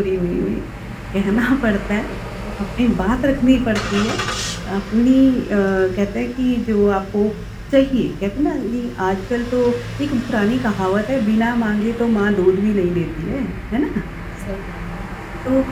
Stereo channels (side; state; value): both; identical; correlation 1.00